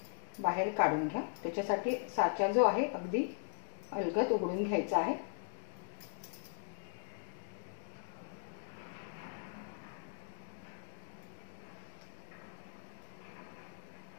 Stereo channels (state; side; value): silent; right; digital silence